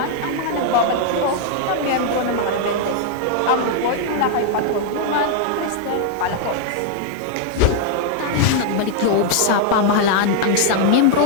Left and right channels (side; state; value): both; different; correlation 0.00